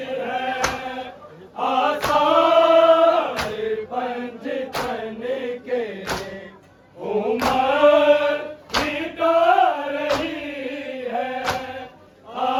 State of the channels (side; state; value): both; identical; correlation 1.00